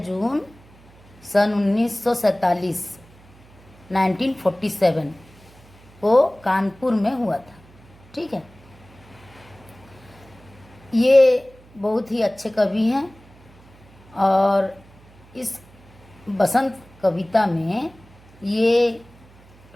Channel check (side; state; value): right; noise; hum, 25 dB below the sound